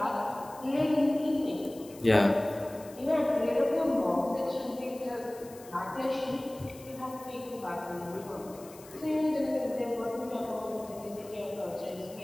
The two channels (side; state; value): left; noise; hiss, 21 dB below the sound